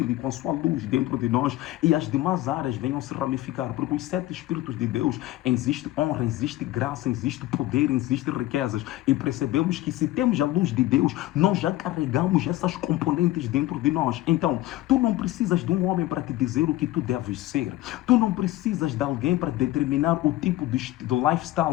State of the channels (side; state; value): right; quieter; 16.2 dB